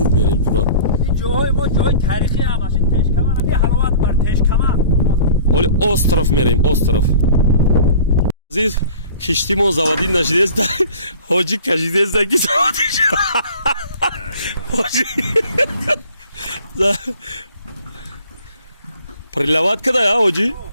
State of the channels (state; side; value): inverted; both; correlation -0.46